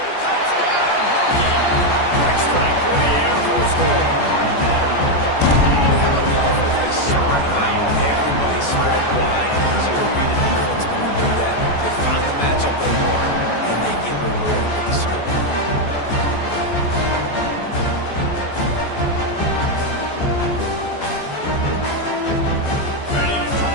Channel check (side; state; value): right; late; 14 ms